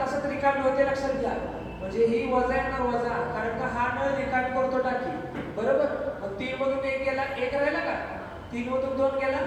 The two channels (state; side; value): identical; both; correlation 1.00